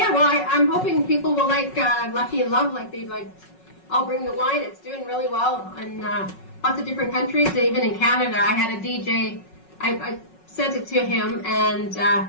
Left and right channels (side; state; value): right; late; 5.4 ms